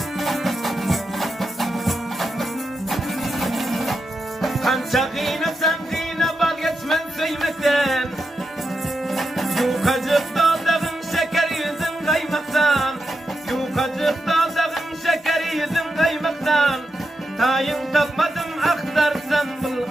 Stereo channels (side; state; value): both; normal; correlation 0.87